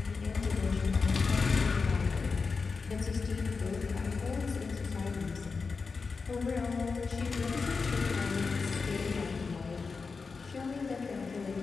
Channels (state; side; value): quieter; right; 4.7 dB